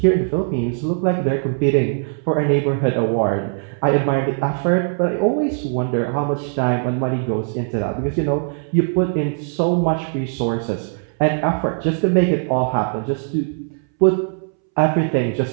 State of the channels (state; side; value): silent; left; 66 dB below the other